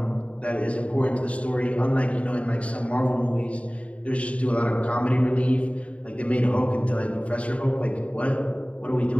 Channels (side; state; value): right; late; 0.065 ms